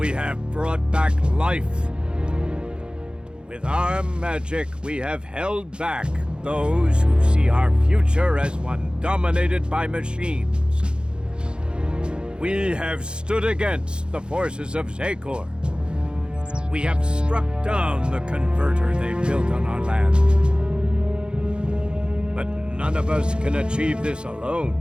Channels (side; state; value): left; late; 0.052 ms